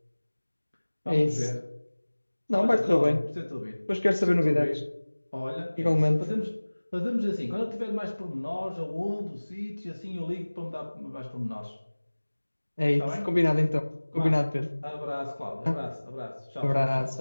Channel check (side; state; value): both; inverted; correlation -1.00